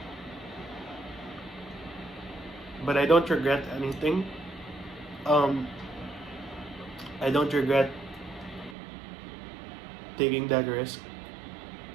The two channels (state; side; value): drops out; left; at 8.8 s